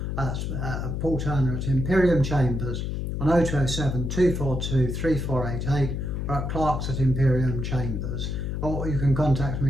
Paul Turner at Imperium Chambers, on 0207 242 3488, or at Clarks at Imperium Chambers. or you can contact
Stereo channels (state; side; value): noise; left; hum, 2 dB below the sound